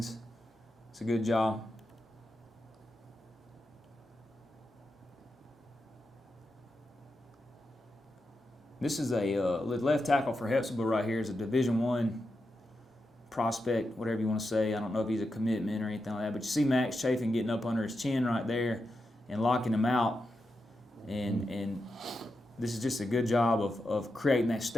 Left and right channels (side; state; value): both; normal; correlation 0.88